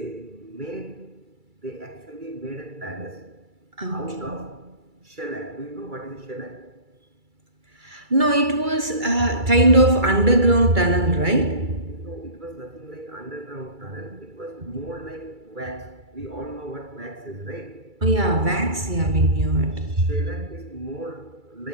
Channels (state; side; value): late; left; 2.3 ms